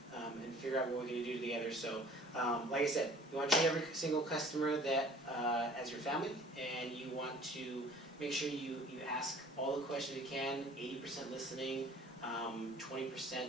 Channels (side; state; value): both; normal; correlation 0.50